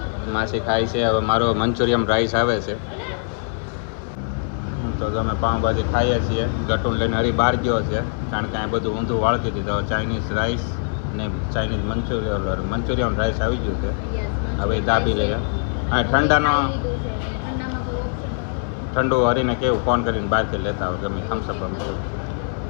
માસી ખાય છે. હવે મારો મંચુરિયન રાઈસ આવે છે. તો અમે પાઉંભાજી ખાઈએ છીએ. ગટુન લઈને હરી બહાર ગયો છે, કારણ કે અહીં બધું ઊંધું વાળતી હતી. તો ચાઇનીઝ રાઈસ ને ચાઇનીઝ મંચુરિયન રાઈસ આવી ગયું છે. હવે દાબી લઈએ. હા ઠંડાનો ઠંડુ હરીને કેવું ફોન કરીને બહારથી લેતા હોય ગમે થમ્સઅપ.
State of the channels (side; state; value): right; silent; 59 dB below the other